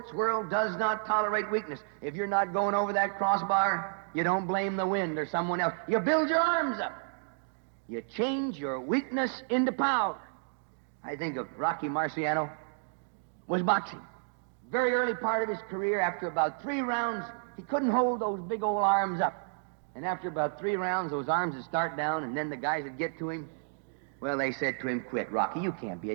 world does not tolerate weakness. If you're not going over that crossbar, you don't blame the wind or someone else. You build your arms up. You change your weakness into power. I think of Rocky Marciano was boxing. Very early part of his career, after about 3 rounds, he couldn't hold those big old arms up. And after about 3 rounds, those arms would start down, and then the guys would get to him. Well, they said to him, quit, Rocky. You can't be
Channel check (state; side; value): silent; left; digital silence